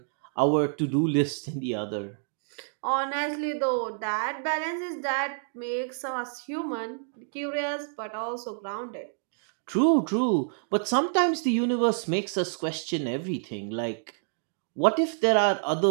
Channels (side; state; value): left; silent; digital silence